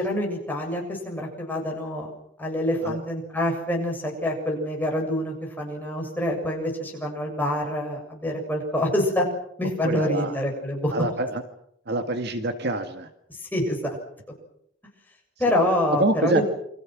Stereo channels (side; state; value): both; normal; correlation 0.39